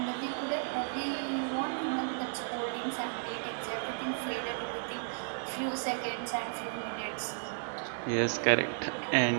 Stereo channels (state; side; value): silent; left; digital silence